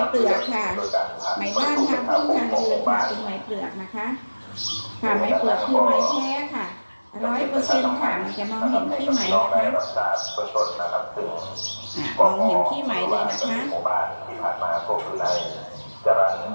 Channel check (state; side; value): inverted; both; correlation -1.00